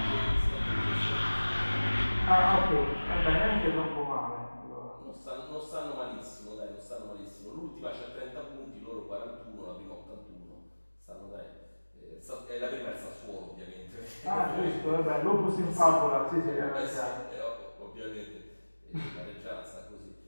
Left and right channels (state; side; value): inverted; both; correlation -1.00